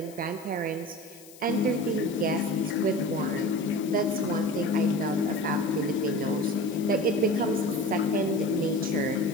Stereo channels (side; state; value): left; noise; hiss, 21 dB below the sound